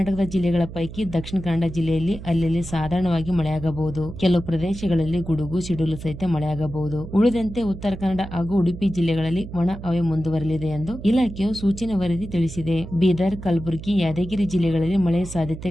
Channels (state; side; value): noise; right; hum, 12 dB below the sound